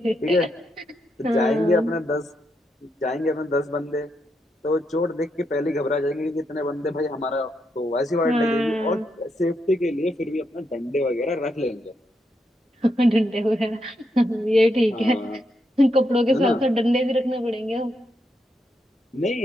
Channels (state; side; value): normal; both; correlation 0.81